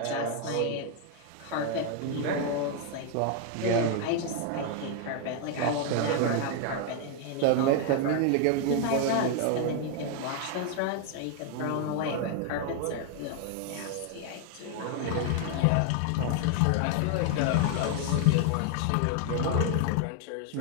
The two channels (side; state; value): both; different; correlation 0.00